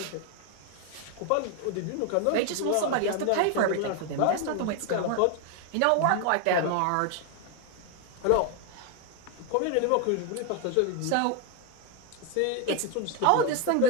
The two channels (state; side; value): different; both; correlation 0.01